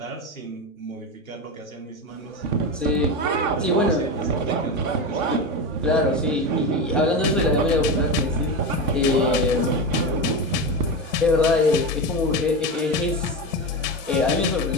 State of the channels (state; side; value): normal; both; correlation 0.19